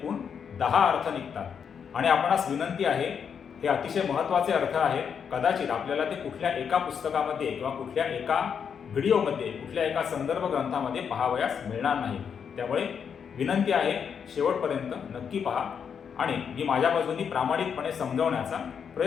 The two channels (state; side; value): quieter; right; 7.1 dB